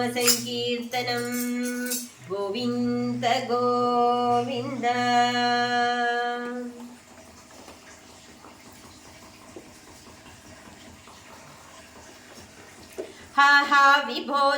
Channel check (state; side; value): identical; both; correlation 1.00